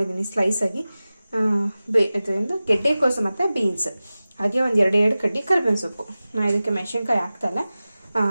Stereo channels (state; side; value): inverted; both; correlation -0.96